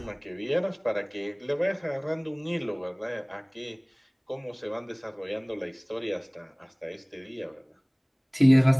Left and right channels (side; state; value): both; identical; correlation 1.00